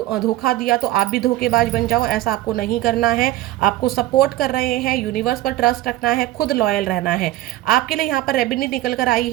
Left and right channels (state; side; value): quieter; left; 15.7 dB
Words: धोखा दिया तो आप भी धोखेबाज बन जाओ, ऐसा आपको नहीं करना है। आपको सपोर्ट कर रहे हैं, यूनिवर्स पर ट्रस्ट रखना है, खुद लॉयल रहना है। आपके लिए यहाँ पर रेमेडी निकल कर आई